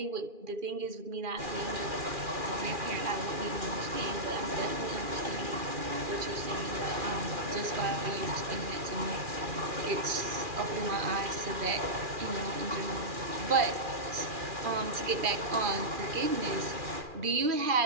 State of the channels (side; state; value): left; late; 2.4 ms